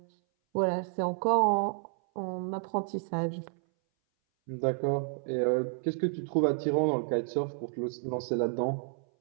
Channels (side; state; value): left; silent; 57 dB below the other